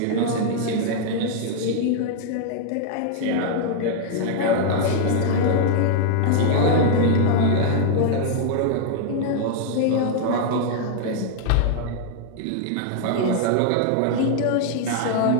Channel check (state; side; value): different; both; correlation 0.00